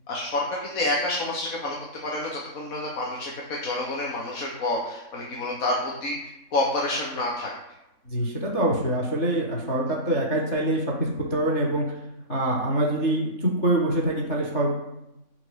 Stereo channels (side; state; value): right; late; 3.6 ms